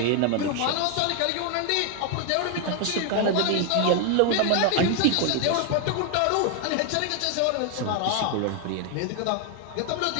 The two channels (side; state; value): both; different; correlation 0.00